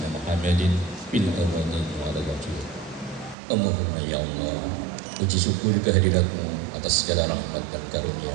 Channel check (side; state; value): left; drops out; at 3.4 s